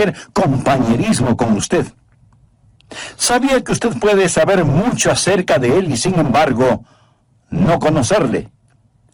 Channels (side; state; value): both; identical; correlation 1.00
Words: compañerismo con usted. ¿Sabía que usted puede saber mucho acerca de Él y sin embargo no conocerle?